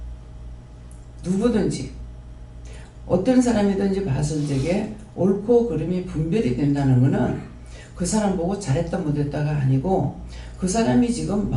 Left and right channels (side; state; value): both; identical; correlation 1.00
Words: 누구든지 어떤 사람이든지 봤을 적에 옳고 그름이 분별이 된다는 것은 그 사람 보고 잘했다 못했다가 아니고 그 사람이 지금